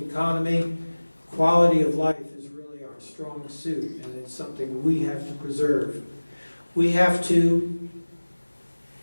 Quality of life is really our strong suit, and it's something we have to preserve. We have to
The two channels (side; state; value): both; inverted; correlation -1.00